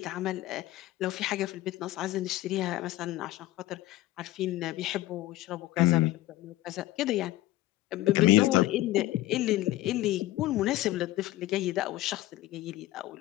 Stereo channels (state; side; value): quieter; right; 16.4 dB